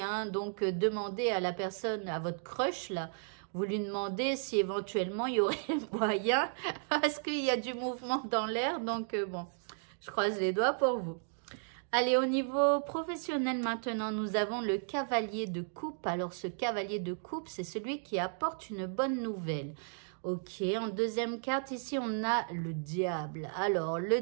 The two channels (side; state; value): left; silent; digital silence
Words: Hein. Donc, demandez à la personne, à votre crush, là, vous lui demandez si éventuellement il y aurait moyen, parce qu'il y a du mouvement dans l'air. Donc bon, je croise les doigts pour vous. Allez, au niveau professionnel maintenant, nous avons le cavalier de coupe. Alors, ce cavalier de coupe, c'est celui qui apporte une bonne nouvelle. Ok, en deuxième carte, ici, on a le diable. Alors, le